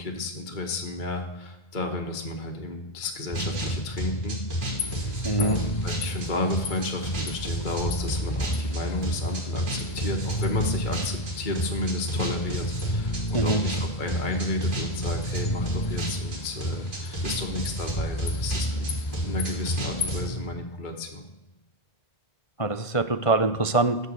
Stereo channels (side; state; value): right; late; 2.2 ms